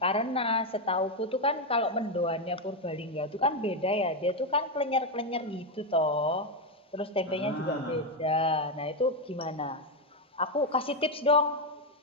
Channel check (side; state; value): both; normal; correlation 0.06